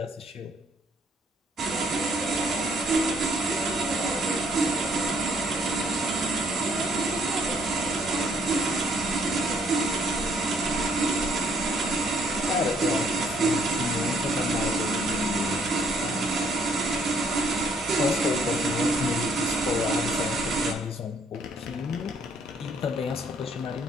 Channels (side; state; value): both; normal; correlation 0.66